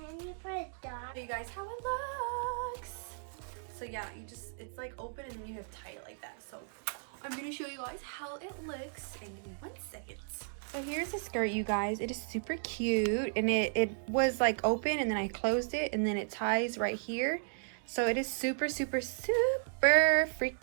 you put a dot? Show you guys how it looks. So yeah, it's like open and then you have tie it like that. So I'm gonna show you guys how it looks, and give me 1 second. So here's the skirt, you guys. It is super cute, and it was like open and then I closed it and then it ties right here. So it is super, super, super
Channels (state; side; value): silent; left; digital silence